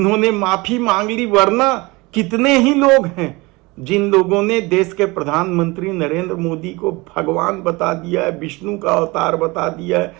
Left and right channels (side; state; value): left; quieter; 23.8 dB